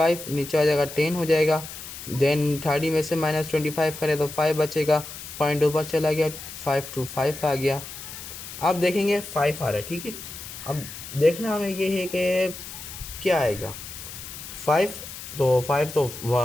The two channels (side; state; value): left; noise; hiss, 12 dB below the sound